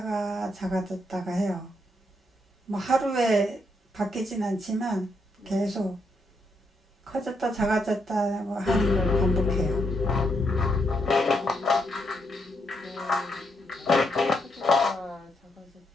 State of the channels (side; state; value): both; normal; correlation 0.78